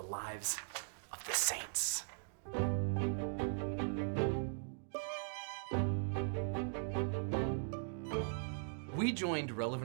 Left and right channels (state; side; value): silent; left; digital silence